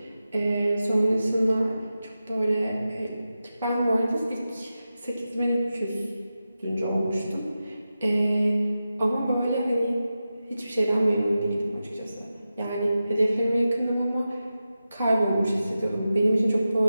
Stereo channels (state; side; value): inverted; both; correlation -0.92